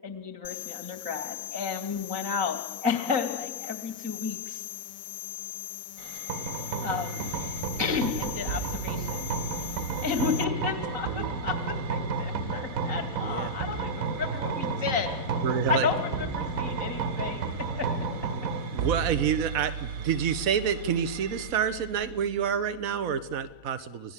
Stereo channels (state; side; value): late; left; 4.1 ms